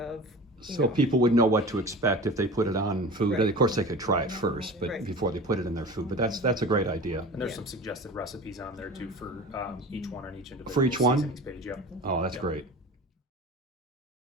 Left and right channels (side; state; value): both; normal; correlation 0.36